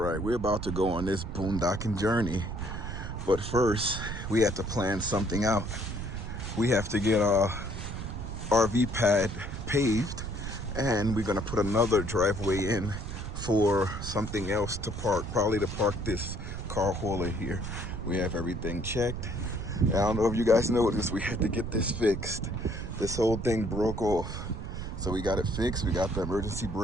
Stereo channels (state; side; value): noise; right; rumble, 6 dB below the sound